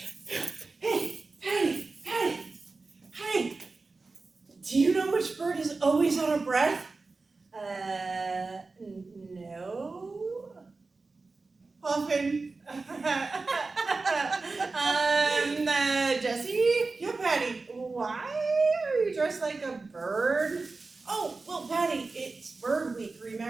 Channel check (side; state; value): left; quieter; 3.8 dB